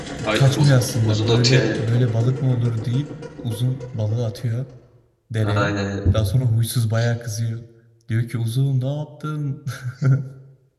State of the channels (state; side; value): identical; both; correlation 1.00